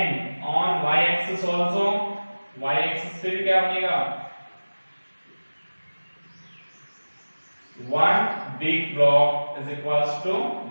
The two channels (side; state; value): both; inverted; correlation -1.00